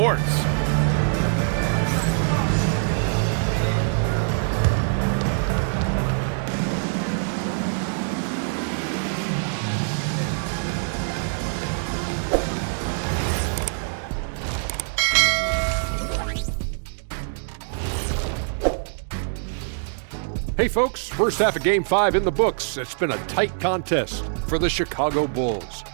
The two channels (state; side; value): silent; left; 61 dB below the other